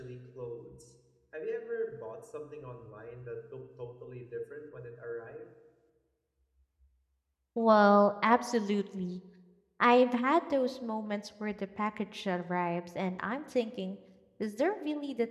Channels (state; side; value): identical; both; correlation 1.00